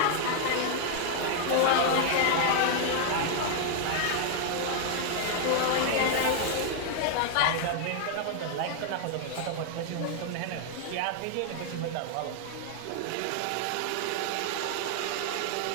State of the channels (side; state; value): both; different; correlation 0.00